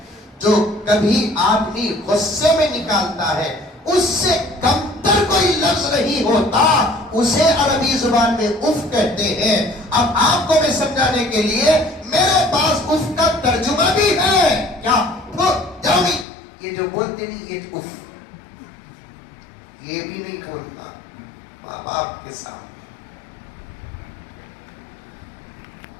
जो कभी आदमी गुस्से में निकालता है उससे कमतर कोई लफ्ज नहीं होता उसे अरबी जुबान में उफ कहते हैं अब आपको मैं समझाने के लिए मेरे पास उफ का तर्जुमा भी है क्या जाओगी ये जो बोलते नहीं ये उफ ये भी नहीं बोलता माँ बाप के सामने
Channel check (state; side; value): drops out; right; at 16.2 s